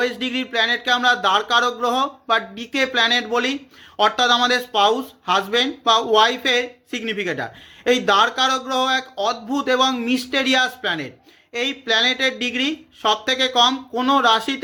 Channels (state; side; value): identical; both; correlation 1.00